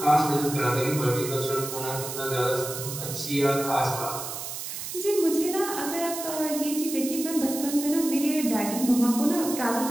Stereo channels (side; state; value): right; noise; hiss, 7 dB below the sound